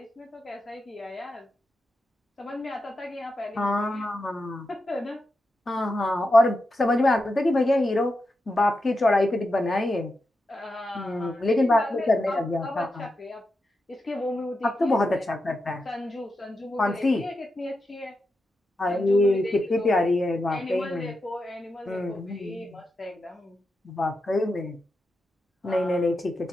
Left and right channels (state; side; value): normal; both; correlation 0.88